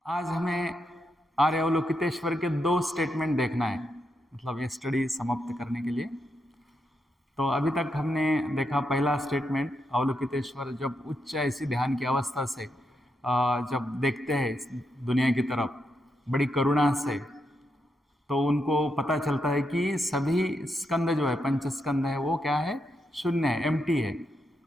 आज हमें आर्य अवलोकितेश्वर के दो स्टेटमेंट देखना है, मतलब ये स्टडी समाप्त करने के लिए। तो अभी तक हमने देखा पहला स्टेटमेंट, अवलोकितेश्वर जब उच्च ऐसी ध्यान की अवस्था से जब देखते हैं दुनिया की तरफ बड़ी करुणा से, तो उनको पता चलता है कि सभी स्कंद जो है, पंच स्कंद है, वो क्या है, शून्य है, एम्प्टी है।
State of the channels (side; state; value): both; normal; correlation 0.83